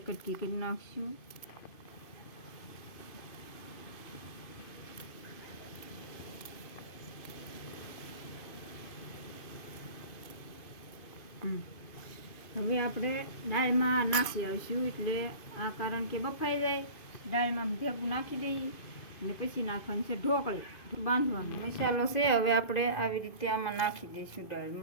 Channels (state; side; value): late; right; 2.5 ms